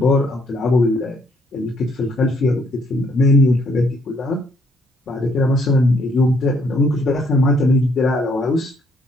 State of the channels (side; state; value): both; normal; correlation 0.68